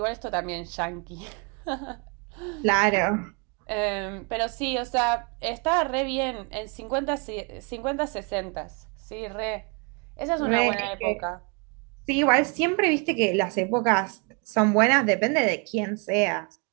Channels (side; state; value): left; quieter; 33.4 dB